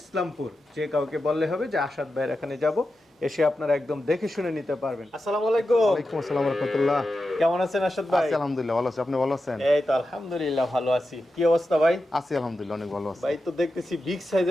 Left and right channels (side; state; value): both; normal; correlation 0.90